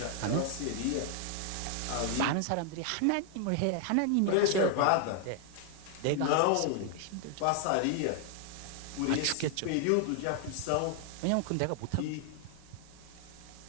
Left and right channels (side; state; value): both; different; correlation 0.00